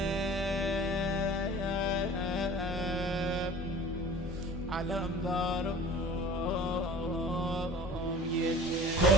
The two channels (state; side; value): noise; left; hum, 11 dB below the sound